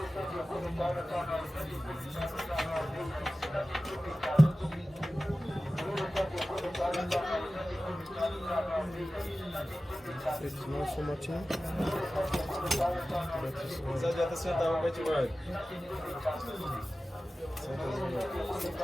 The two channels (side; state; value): both; normal; correlation 0.95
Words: It's not so much in. Você adianta sentar um pouquinho mais.